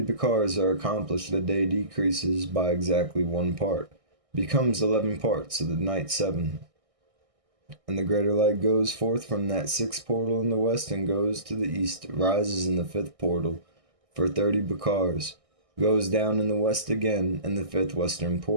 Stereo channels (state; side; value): late; left; 1.6 ms